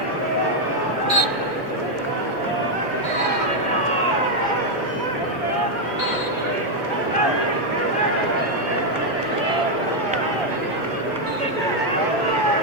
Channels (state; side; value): normal; both; correlation 0.01